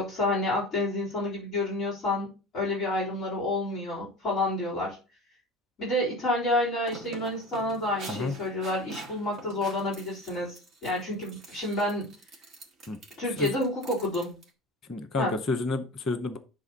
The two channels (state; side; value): normal; both; correlation 0.33